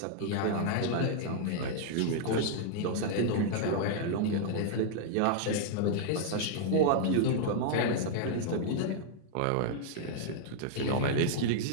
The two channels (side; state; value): both; different; correlation -0.01